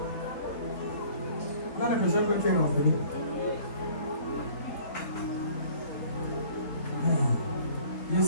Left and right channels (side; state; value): right; late; 4.0 ms